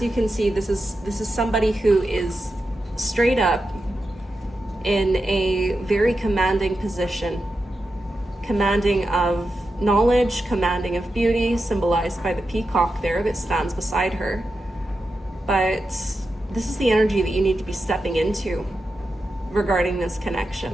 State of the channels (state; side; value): normal; both; correlation 0.89